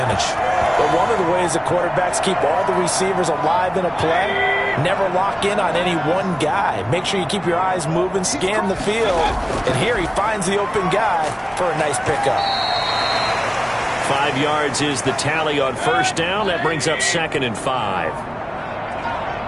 But one of the ways the quarterbacks keep all the receivers alive in a play, never lock in on any one guy. Make sure you keep your eyes moving, scan the field, and here he finds the open guy for a nice pickup. 5 yards is the tally on 1st down. That brings up 2nd and 5.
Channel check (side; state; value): both; identical; correlation 1.00